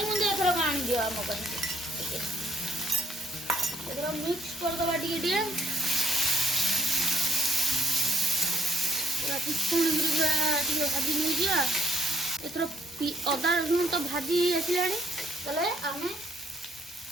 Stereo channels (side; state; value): both; normal; correlation 0.67